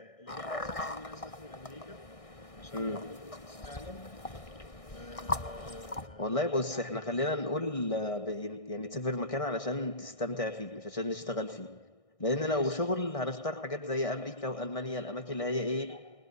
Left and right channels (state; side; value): late; right; 1.6 ms